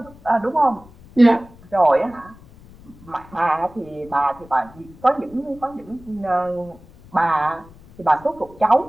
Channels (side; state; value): left; noise; rumble, 23 dB below the sound